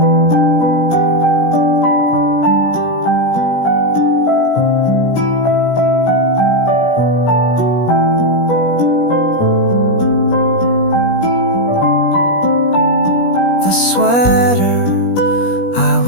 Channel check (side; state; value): right; late; 17 ms